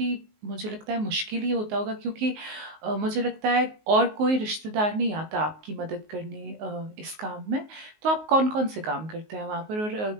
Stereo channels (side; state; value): left; late; 19 ms